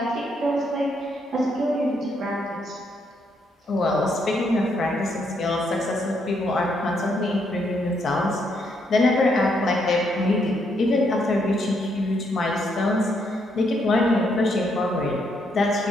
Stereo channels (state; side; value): normal; both; correlation 0.75